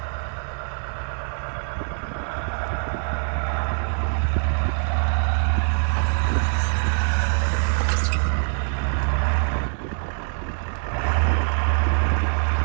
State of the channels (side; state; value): left; silent; 63 dB below the other